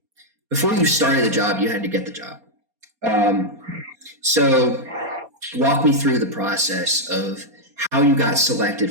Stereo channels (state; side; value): late; left; 4.3 ms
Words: before you started the job, you had to get the job. So walk me through the process of how you got selected